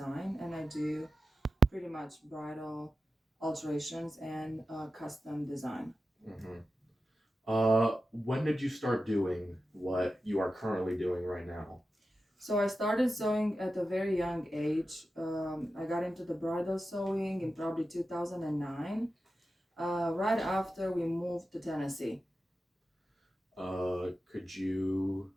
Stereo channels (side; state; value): both; normal; correlation 0.92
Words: and I do pretty much bridal alterations and custom design. hmm when did you start doing what you are currently doing right now? So I started sewing at a very young age. I got into the bridal sewing in probably 2009, right after we moved to Tennessee. Could you